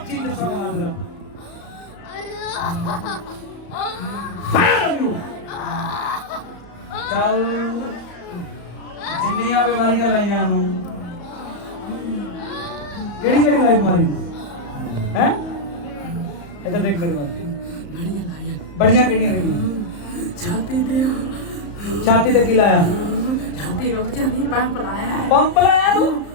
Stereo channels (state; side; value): late; right; 34 ms